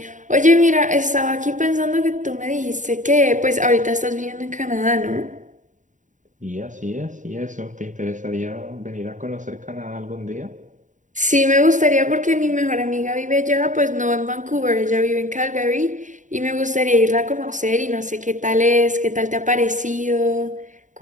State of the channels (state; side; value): late; left; 0.36 ms